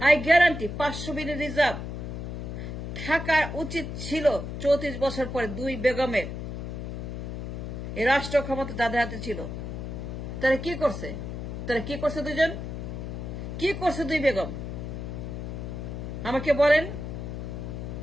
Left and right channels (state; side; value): noise; left; hum, 6 dB below the sound